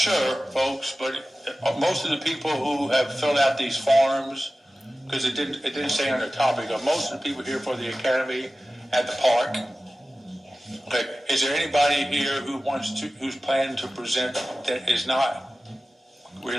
folks, but most of the people who have filled out these forms, because it didn't say on the topic, most of the people here for the academy at the park. Okay, is there anybody here who's planning to present that is not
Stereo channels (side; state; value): both; normal; correlation 0.95